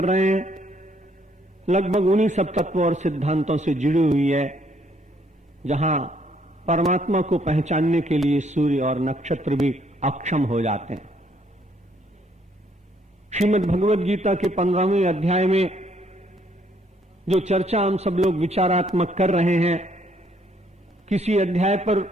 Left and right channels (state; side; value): normal; both; correlation 0.68